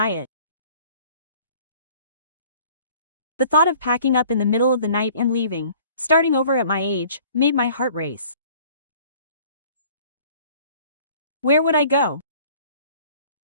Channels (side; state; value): both; inverted; correlation -0.52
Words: it. The thought of packing up in the middle of the night and leaving, starting over at my age, made my heart race. Where would I go?